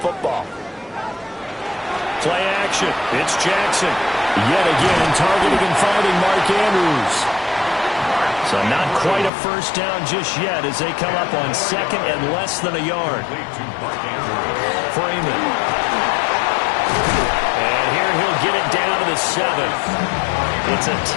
Play action. It's Jackson. Yet again, targeting and finding Mark Andrews. So not quite a first down just yet as they come up on 2nd and less than a yard. Freeman. And here he'll get it down to the 7th. It's a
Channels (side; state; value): right; drops out; at 9.3 s